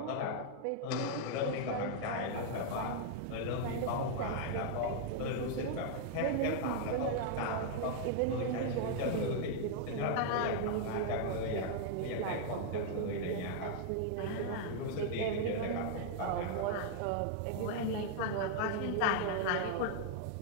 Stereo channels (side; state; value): both; different; correlation -0.01